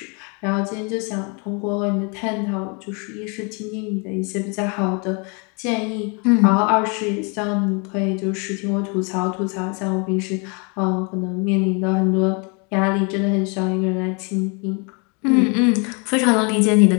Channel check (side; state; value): right; quieter; 33.6 dB